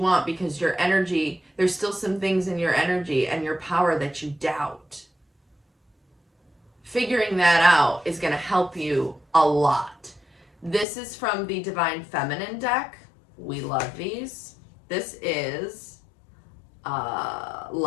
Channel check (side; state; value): right; drops out; at 10.9 s